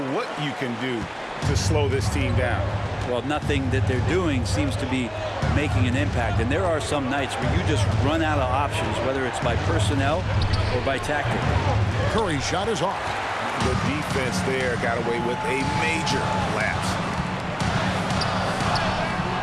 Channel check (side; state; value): both; identical; correlation 1.00